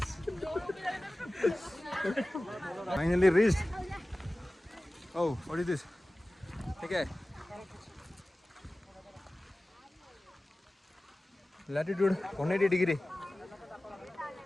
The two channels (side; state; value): both; normal; correlation 0.97